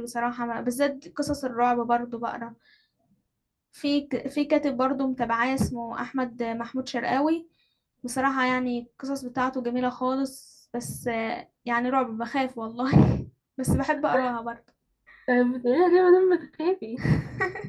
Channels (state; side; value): identical; both; correlation 1.00